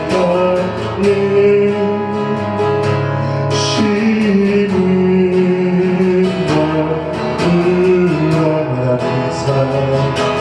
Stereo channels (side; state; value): both; identical; correlation 1.00